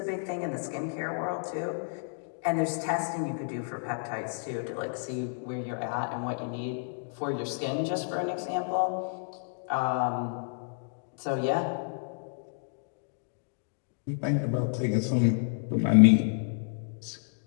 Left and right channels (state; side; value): silent; right; digital silence